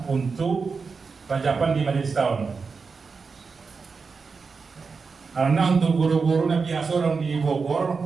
untuk rajapan di majelis tahun. Karena untuk guru-guru Nabi biasa orang di Bogor,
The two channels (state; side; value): quieter; left; 4.9 dB